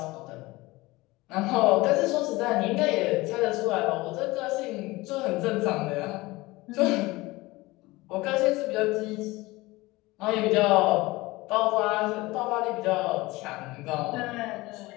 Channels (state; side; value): quieter; right; 20.8 dB